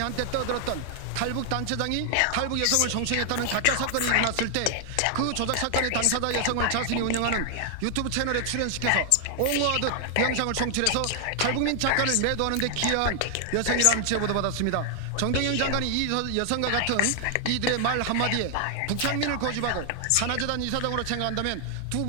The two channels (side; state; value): both; different; correlation 0.00